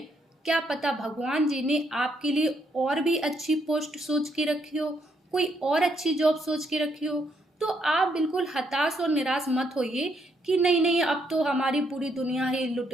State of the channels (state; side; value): normal; both; correlation 0.74